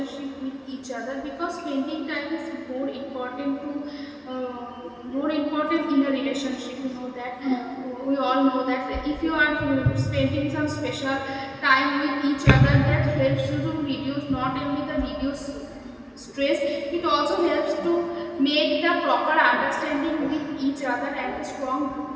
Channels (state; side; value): identical; both; correlation 1.00